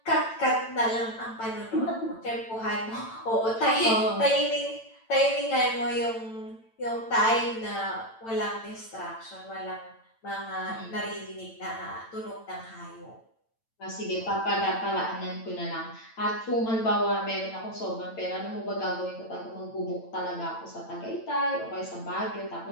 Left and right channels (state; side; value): late; right; 8.9 ms